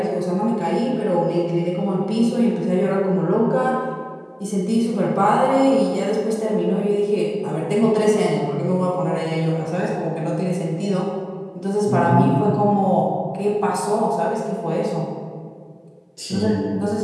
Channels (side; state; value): both; identical; correlation 1.00